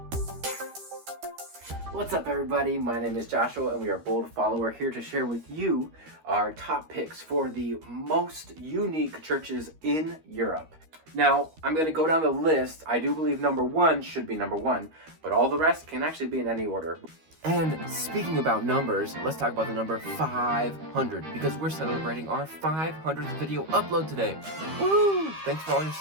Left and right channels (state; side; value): late; left; 13 ms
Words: What's up, everybody? My name is Joshua and we are Bold Follower, here to share with you our top picks for the most unique churches in Europe. Now, I'm going to go down the list. I do believe number one should be number one, but all the rest can actually be in any order. And speaking about numbers, let's talk about the number 500, because we're celebrating our 500th video upload today. Woo! Thanks for all your